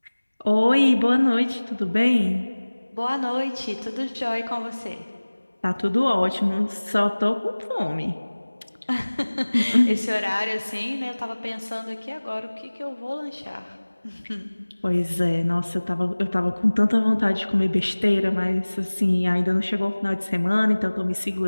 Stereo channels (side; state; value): both; inverted; correlation -1.00